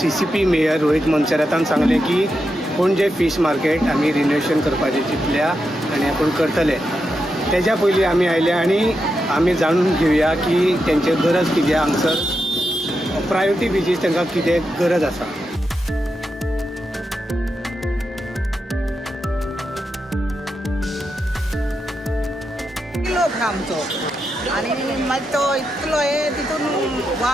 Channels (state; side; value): normal; both; correlation 0.87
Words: CCP मेयर रोहित मोन्सेरातान सांगलें की पणजे फीश मार्केट आमी रिनोवेशन करपाचें चिंतल्या आनी आपूण करतले. तेज्या पयलीं आमी आयल्या आनी आमी जाणून घेवया की तेंचे गरज कितें, हांगसर प्रायोरिटी बेजीस तांकां कितें गरज आसा. आमचो आनी मागीर तो इतलो तितून